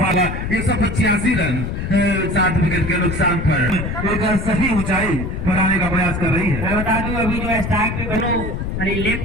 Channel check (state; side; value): noise; left; rumble, 4 dB below the sound